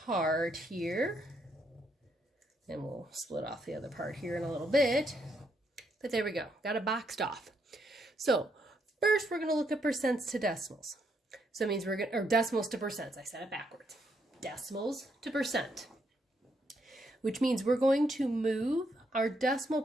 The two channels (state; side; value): normal; both; correlation 0.76